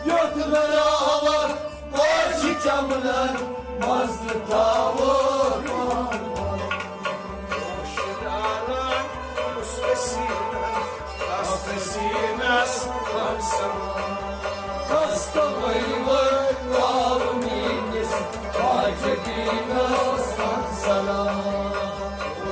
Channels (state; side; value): identical; both; correlation 1.00